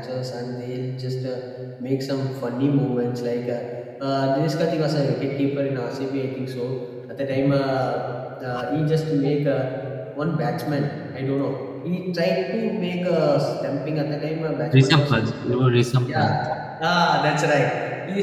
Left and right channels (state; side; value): identical; both; correlation 1.00